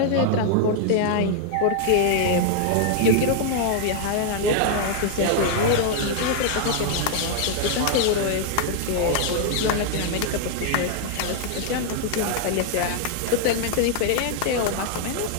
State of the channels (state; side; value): different; both; correlation 0.00